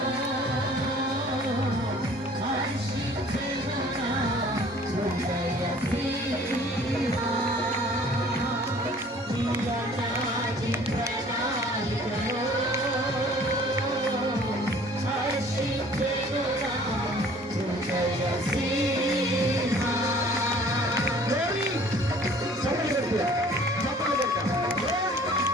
హర్షించెను నా హృదయ సీమా. నీ అనాది ప్రణాళికలో హర్షించెను నా హృదయ సీమా.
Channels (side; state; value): both; normal; correlation 0.52